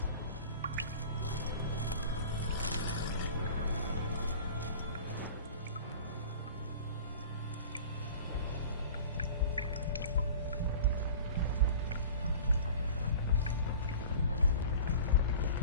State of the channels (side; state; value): both; inverted; correlation -0.40